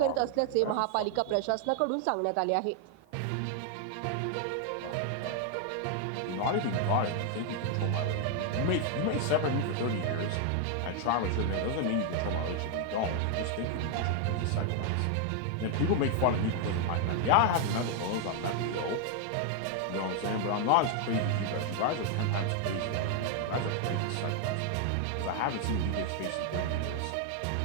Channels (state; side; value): different; both; correlation 0.00